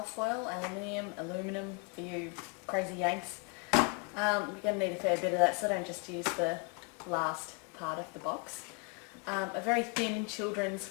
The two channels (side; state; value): right; quieter; 32.8 dB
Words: aluminum for you crazy Yanks. You're going to need a fair bit of that, so don't just use the last part of the box. A very thin children's